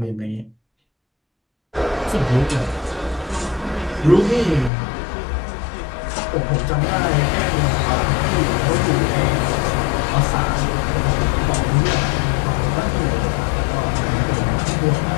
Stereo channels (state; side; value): drops out; right; at 4.7 s